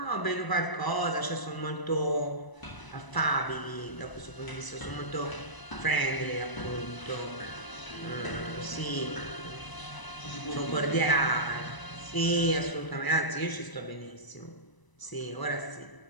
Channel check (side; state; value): right; late; 1.0 ms